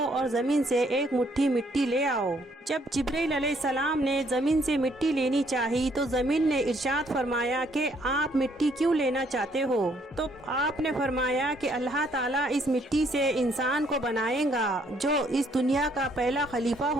اور زمین سے ایک مٹھی مٹی لے آؤ۔ جب جبریل علیہ السلام نے زمین سے مٹی لینی چاہی تو زمین نے ارشاد فرمایا کہ آپ مٹی کیوں لینا چاہتے ہو؟ تو آپ نے فرمایا کہ اللہ تعالیٰ اس مٹی سے انسان کو بنائے گا جو اس دنیا کا پہلا خلیفہ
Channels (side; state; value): both; normal; correlation 0.67